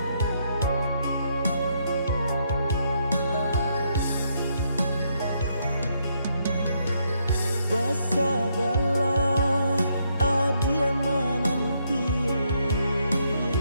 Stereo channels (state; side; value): inverted; both; correlation -0.75